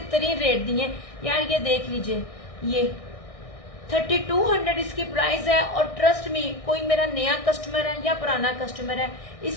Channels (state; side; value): late; right; 1.6 ms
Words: तरीन रेट दिए यार। ये देख लीजिए, ये 3200 इसकी प्राइस है। और ट्रस्ट मी, कोई मेरा नया कस्टमर है या पुराना कस्टमर है,